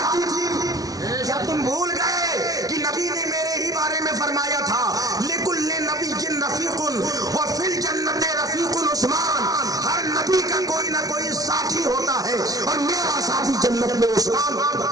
دی تھی؟ کیا تم بھول گئے کہ نبی نے میرے ہی بارے میں فرمایا تھا لِكُلِّ نَبِيٍّ رَفِيقٌ وَفِي الْجَنَّةِ رَفِيقٌ عثمان، ہر نبی کا کوئی نہ کوئی ساتھی ہوتا ہے اور میرا ساتھی جنت میں عثمان ہوگا۔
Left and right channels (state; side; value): late; left; 0.18 ms